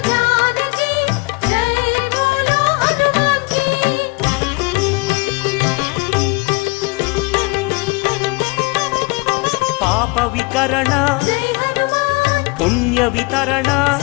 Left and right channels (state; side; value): quieter; right; 26.5 dB